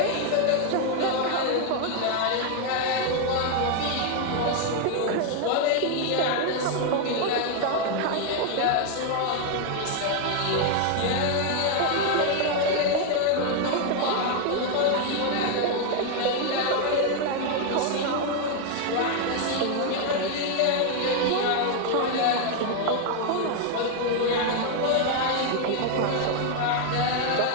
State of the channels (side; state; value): both; different; correlation 0.01